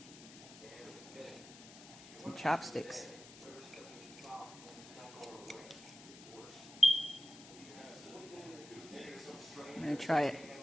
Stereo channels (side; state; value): left; noise; hiss, 17 dB below the sound